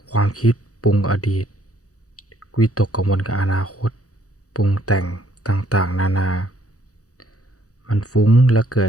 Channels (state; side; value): late; right; 0.66 ms